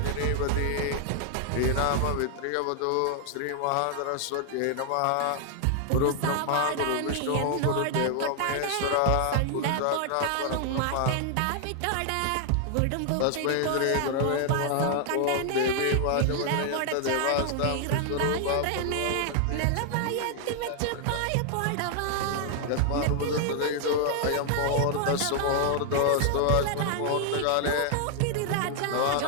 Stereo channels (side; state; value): both; different; correlation 0.00